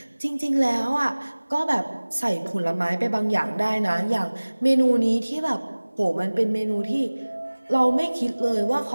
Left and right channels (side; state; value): both; inverted; correlation -1.00